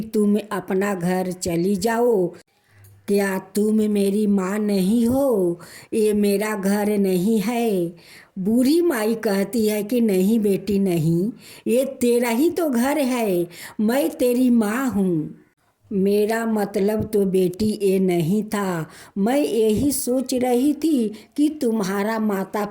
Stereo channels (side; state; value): both; identical; correlation 1.00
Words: तुम अपना घर चली जाओ, क्या तुम मेरी माँ नहीं हो? ये मेरा घर नहीं है। बूढ़ी माई कहती है कि नहीं बेटी नहीं, ये तेरा ही तो घर है, मैं तेरी माँ हूँ। मेरा मतलब तो बेटी ये नहीं था। मैं यही सोच रही थी कि तुम्हारा माता